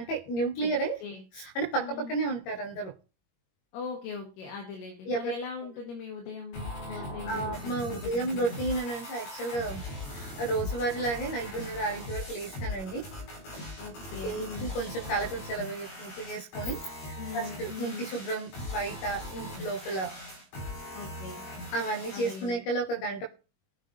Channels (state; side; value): late; right; 21 ms